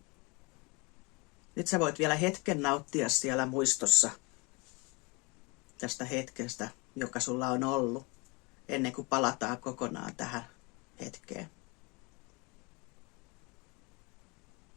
Nyt sä voit vielä hetken nauttia siellä muistossa tästä hetkestä, joka sulla on ollut, ennen kuin palataan kokonaan tähän hetkeen.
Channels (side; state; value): right; quieter; 28.0 dB